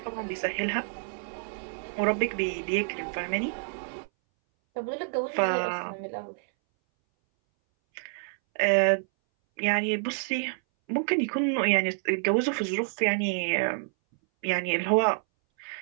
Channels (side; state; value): left; silent; 59 dB below the other